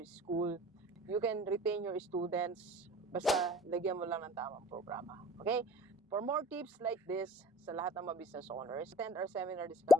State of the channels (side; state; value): both; normal; correlation 0.47